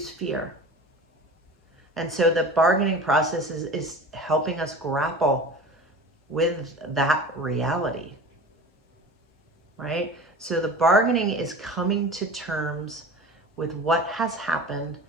fear. And so the bargaining process is helping us grapple with that reality, right? So the bargaining is coming to terms with what has happened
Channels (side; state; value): both; normal; correlation 0.36